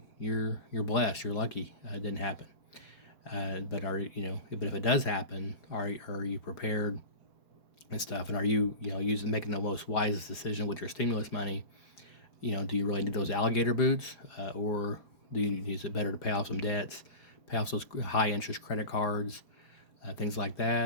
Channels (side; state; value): right; late; 4.4 ms